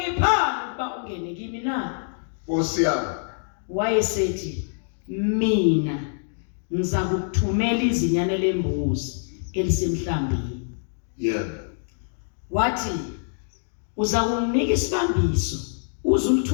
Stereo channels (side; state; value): right; silent; digital silence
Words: ukuba ungene kimi na? Nkosi yami. Wayesethi, mina ngiza kukuthumela izinyane lembuzi elisemhlambini. Wathi uza kunginika isibambiso